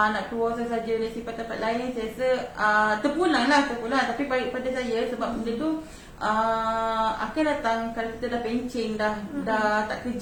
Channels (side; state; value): both; identical; correlation 1.00